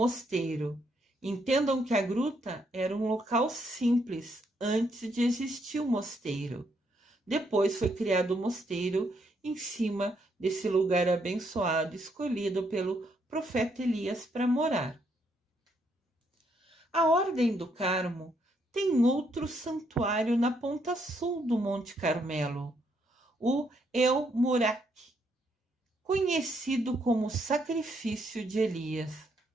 Entendam que a gruta era um local simples antes de existir o mosteiro. Depois foi criado o mosteiro em cima desse lugar abençoado, escolhido pelo profeta Elias para morar. A Ordem do Carmo tem outro santuário na ponta sul do Monte Carmelo, o El Murak, conhecido como Sacrifício de Elias.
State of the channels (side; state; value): both; normal; correlation 0.74